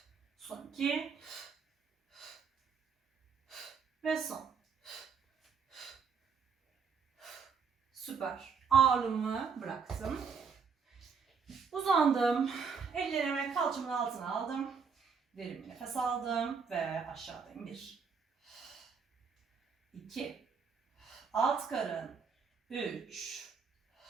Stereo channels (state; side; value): quieter; left; 5.8 dB